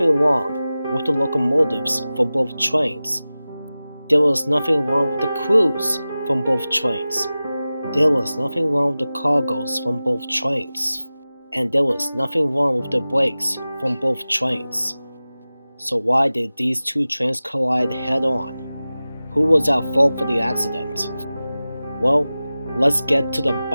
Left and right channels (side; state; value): both; inverted; correlation -0.96